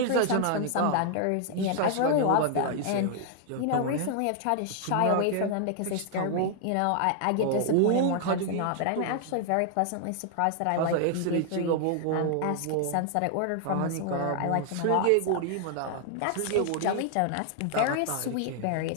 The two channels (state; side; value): different; both; correlation 0.00